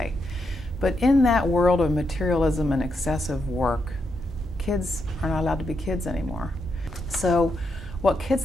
But in that world of materialism and excessive work, kids are not allowed to be kids anymore. So what kids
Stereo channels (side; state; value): both; normal; correlation 0.82